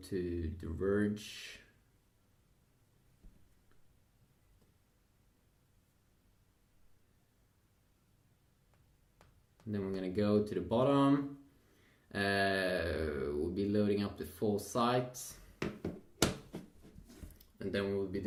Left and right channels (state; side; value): identical; both; correlation 1.00